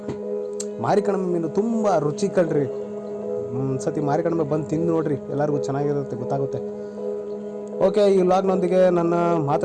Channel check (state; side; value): identical; both; correlation 1.00